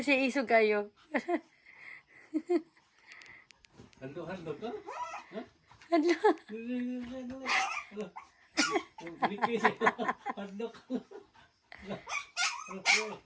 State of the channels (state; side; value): identical; both; correlation 1.00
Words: siya isog kayo. Hando ka? Ha? Ano? Bikis. Hando ka.